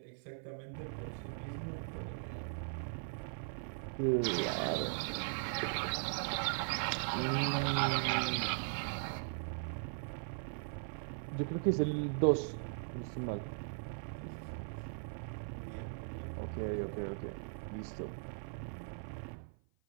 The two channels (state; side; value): silent; left; 52 dB below the other